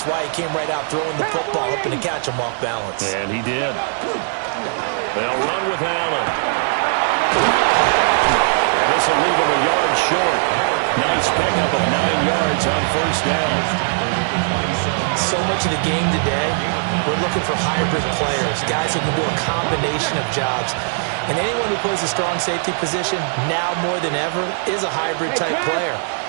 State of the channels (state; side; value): silent; left; digital silence